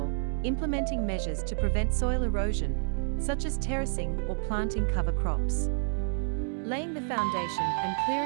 implementing measures to prevent soil erosion, such as terracing or planting cover crops. Laying the foundation and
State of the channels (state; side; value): silent; left; digital silence